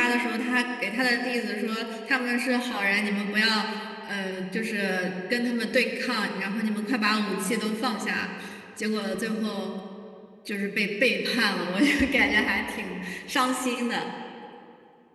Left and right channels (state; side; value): identical; both; correlation 1.00